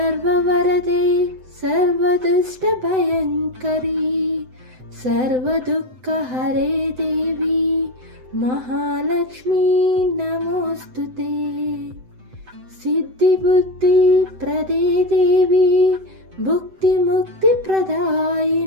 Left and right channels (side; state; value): left; late; 7.8 ms